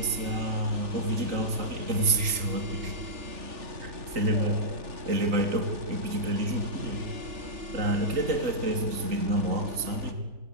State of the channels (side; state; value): left; late; 3.8 ms